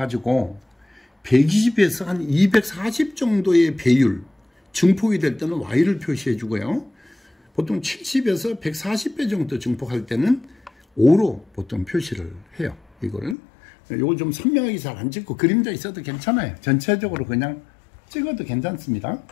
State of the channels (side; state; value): right; drops out; at 13.4 s